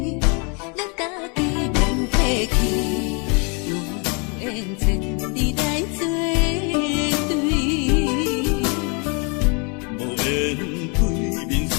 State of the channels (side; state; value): right; quieter; 34.0 dB